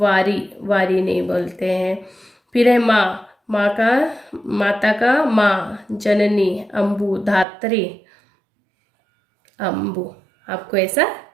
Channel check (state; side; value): drops out; left; at 7.5 s